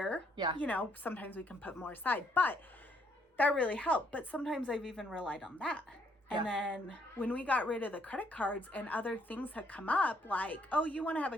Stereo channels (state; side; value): normal; both; correlation 0.70